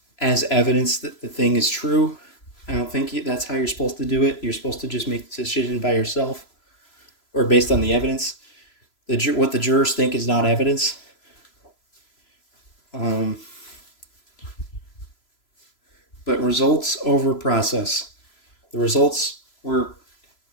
as evidence that the thing is true? I don't think that's how you're supposed to do it. You're supposed to just make the decision by yourself or based on the evidence. What the jurors think is not evidence. But results over process. The results were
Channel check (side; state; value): right; late; 3.0 ms